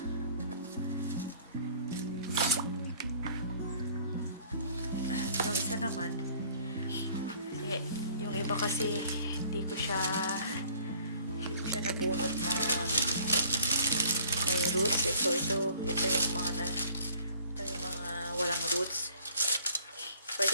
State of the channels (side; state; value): both; inverted; correlation -0.54